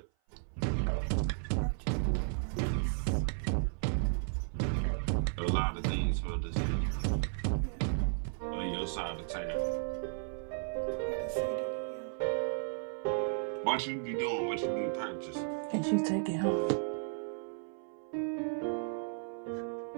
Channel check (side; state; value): left; silent; 55 dB below the other